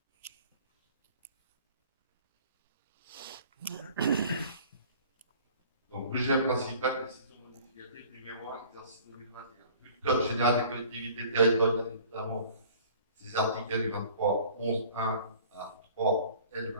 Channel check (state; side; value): inverted; both; correlation -0.49